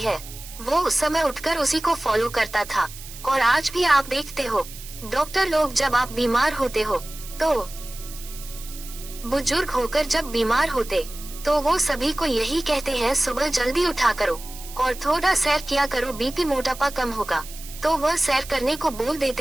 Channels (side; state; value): right; noise; hiss, 15 dB below the sound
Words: है वो उस समय उठकर उसी को फॉलो करता था। और आज भी आप देखते हो, डॉक्टर लोग जब आप बीमार होते हो, तो बुजुर्ग होकर जब बीमार होते तो वो सभी को यही कहते हैं, सुबह जल्दी उठा करो और थोड़ा सैर किया करो, बीपी मोटापा कम होगा। तो वह सैर करने को बोल